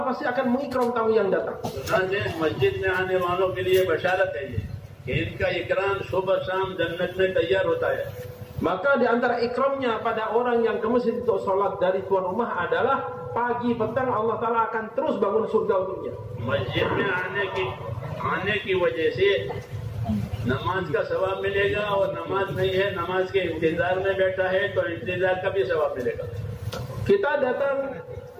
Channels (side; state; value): both; identical; correlation 1.00